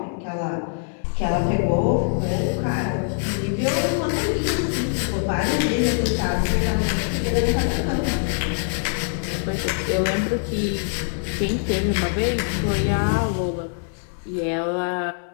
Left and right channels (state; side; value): silent; right; digital silence